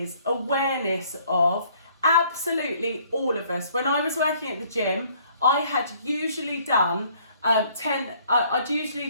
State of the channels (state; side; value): inverted; both; correlation -0.61